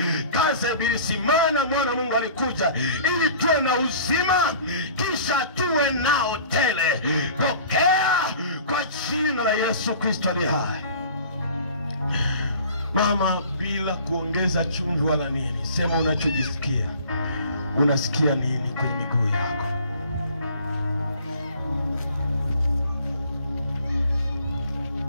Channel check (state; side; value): inverted; both; correlation -0.47